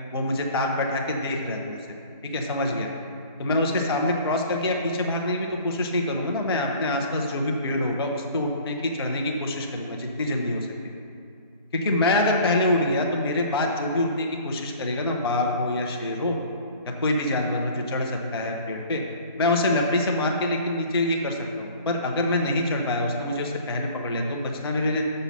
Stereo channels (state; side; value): inverted; both; correlation -0.48